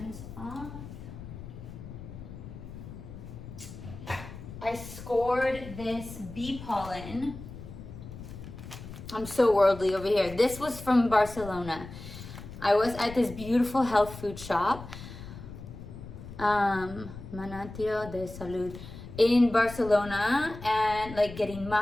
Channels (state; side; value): noise; left; rumble, 13 dB below the sound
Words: off. I scored this bee pollen. I'm so worldly over here. This was from Barcelona. I was at this beautiful health food shop, Manantial de Salud, in Barcelona, and like getting